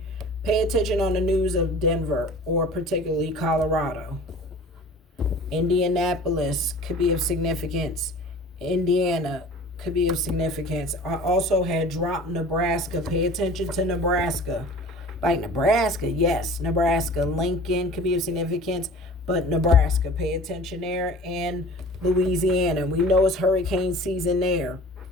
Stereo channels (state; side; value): normal; both; correlation 0.43